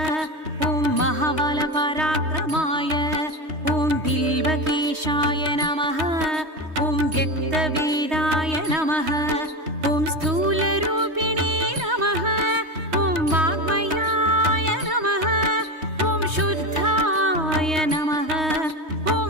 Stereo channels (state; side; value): late; left; 3.2 ms